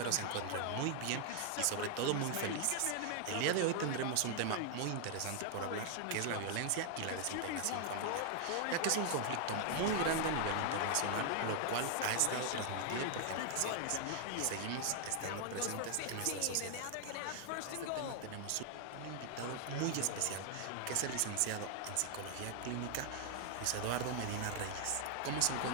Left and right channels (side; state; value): both; different; correlation 0.00